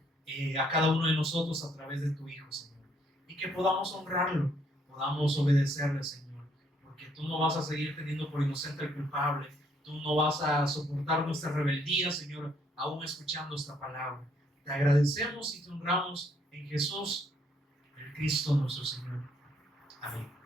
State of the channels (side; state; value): both; normal; correlation 0.69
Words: a cada uno de nosotros a través de tu Hijo, Señor. Y que podamos honrarlo, podamos obedecerle, Señor, porque tú no vas a seguir teniendo por inocente al culpable, tú no vas a soportar nuestra rebeldía, Señor, aún escuchando esta palabra. Te agradecemos y te honramos en Jesús, el Cristo nuestro Señor. Amén.